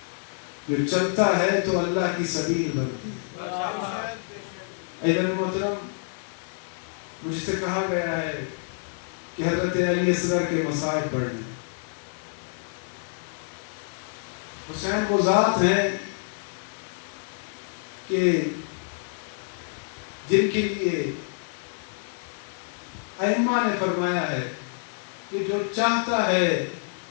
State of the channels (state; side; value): silent; right; digital silence